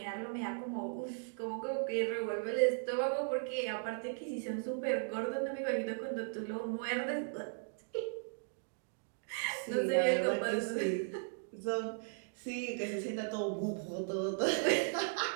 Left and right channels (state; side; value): silent; left; digital silence